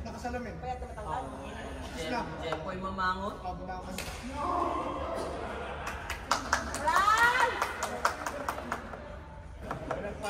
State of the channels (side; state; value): both; identical; correlation 1.00